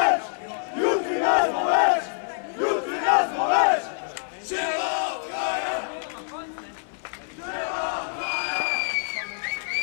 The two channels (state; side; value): silent; right; 61 dB below the other